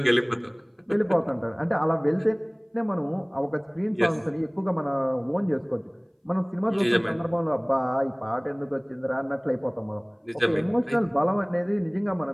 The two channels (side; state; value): both; identical; correlation 1.00